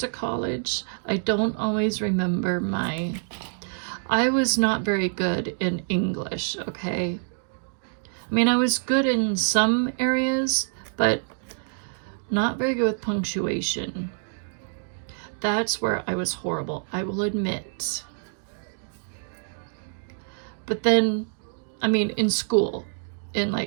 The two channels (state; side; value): silent; left; digital silence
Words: college. I don't always remember I was not very good in English, okay? I mean, I was good in some areas, but not very good with punctuation. That's where I was horrible, I will admit. But then, I mean, in school, in